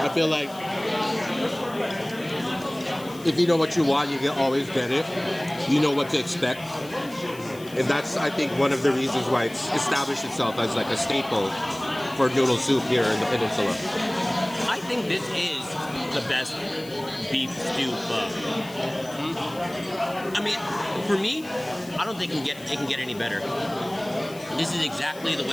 feel like if you know what you want, you can always get it. You know what to expect. And that's, I think, one of the reasons why it's established itself as like a staple for noodle soup here in the Peninsula. I think this is the best beef stew pho. I mean, for me, I don't think it can get any better. This is exactly the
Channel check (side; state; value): left; noise; hiss, 20 dB below the sound